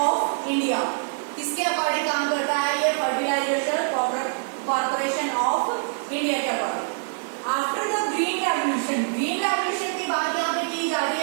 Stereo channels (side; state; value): left; silent; 62 dB below the other